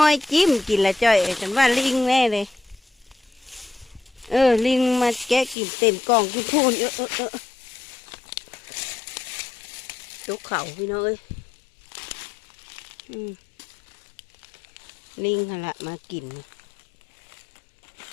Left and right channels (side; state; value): right; drops out; at 5.6 s